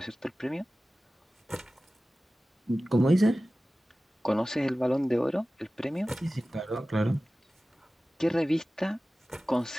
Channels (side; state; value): both; normal; correlation 0.96